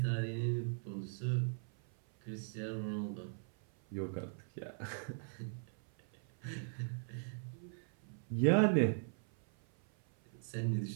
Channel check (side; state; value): left; silent; 52 dB below the other